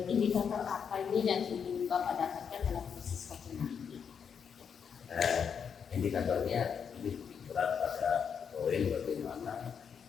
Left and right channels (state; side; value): quieter; right; 7.0 dB